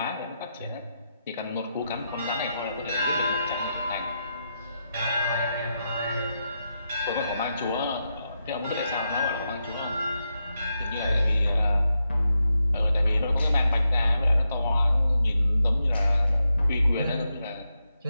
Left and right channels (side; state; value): both; inverted; correlation -0.86